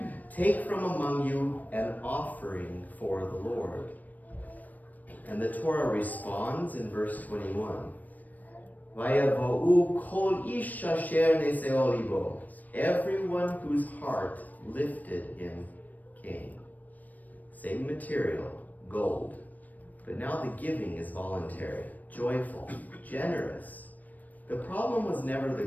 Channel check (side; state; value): right; late; 0.081 ms